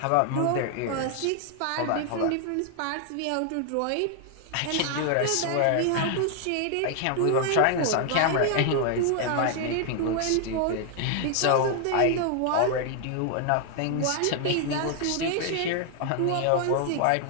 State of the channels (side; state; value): both; different; correlation 0.00